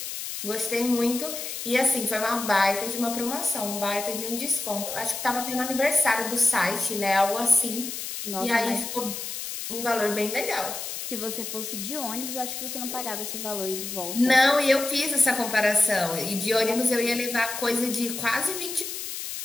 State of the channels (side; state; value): left; noise; hiss, 6 dB below the sound